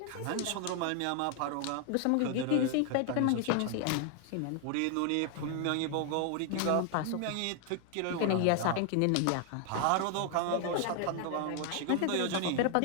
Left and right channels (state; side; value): different; both; correlation 0.00